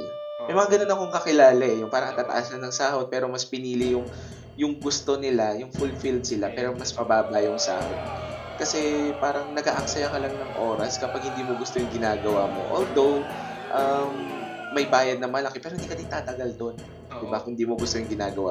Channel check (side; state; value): both; identical; correlation 1.00